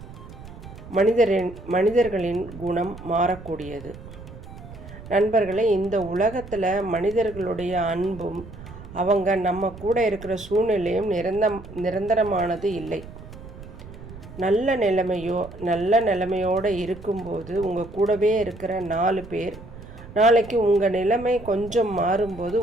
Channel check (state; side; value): noise; right; rumble, 15 dB below the sound